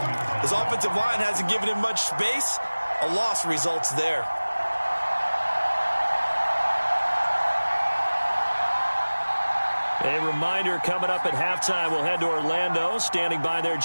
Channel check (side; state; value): both; inverted; correlation -1.00